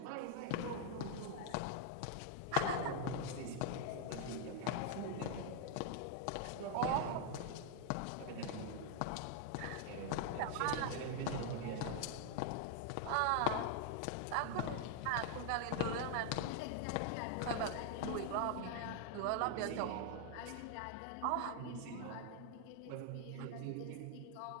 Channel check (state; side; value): different; both; correlation 0.00